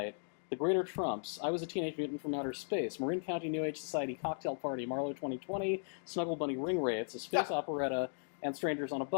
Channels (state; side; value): silent; right; digital silence